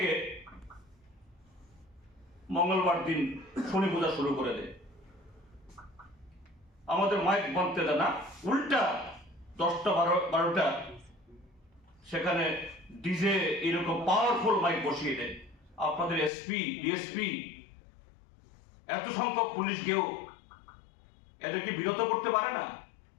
মঙ্গলবার দিন শনি পূজা শুরু করে দেয়। আমাদের মাইক বাঁধতে দেয় না, উল্টা 10টা-12টা সেখানে ডিজে এরকম পাওয়ারফুল মাইক বসিয়ে দেয়। আপনাদের এসপি, ডিএসপি, এত সংখ্যক পুলিশ গিয়েও এদেরকে বিরত করতে পারে না।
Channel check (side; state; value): right; drops out; at 16.3 s